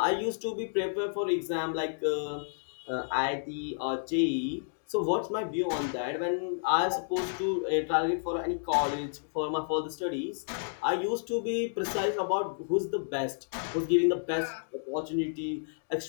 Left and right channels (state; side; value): silent; right; digital silence